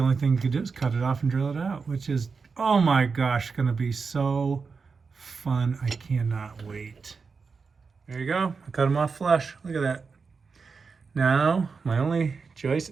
only thing you could do is cut it off and drill it out, which is, oh my gosh, gonna be so fun. I cannot wait. There you go. I cut them off flush. Look at that. Now, my only choice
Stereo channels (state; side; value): quieter; left; 5.0 dB